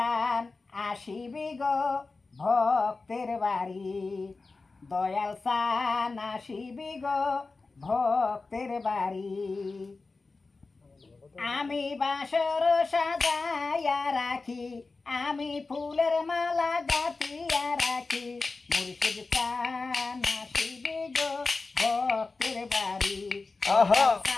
আসিবি গো ভক্তের বাড়ি, দয়াল চান আসিবি গো ভক্তের বাড়ি। আমি বাসর সাজাইয়া রাখি, আমি ফুলের মালা গাঁথিয়া রাখি। মুর্শিদ চান আসিবি গো ভক্তের বাড়ি,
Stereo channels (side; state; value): right; quieter; 3.8 dB